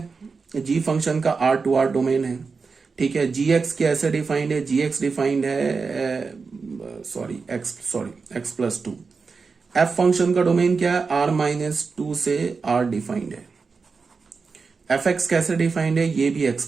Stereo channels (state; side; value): quieter; left; 4.8 dB